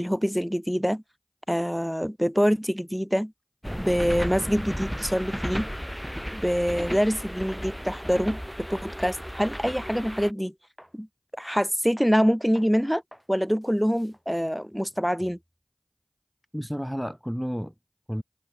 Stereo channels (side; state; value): both; identical; correlation 1.00